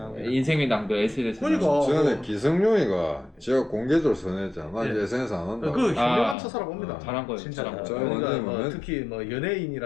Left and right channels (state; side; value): drops out; right; at 6.4 s